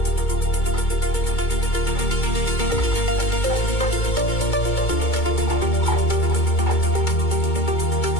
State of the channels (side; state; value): right; late; 2.2 ms